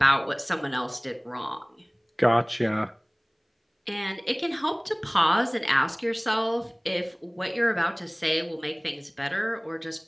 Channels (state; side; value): identical; both; correlation 1.00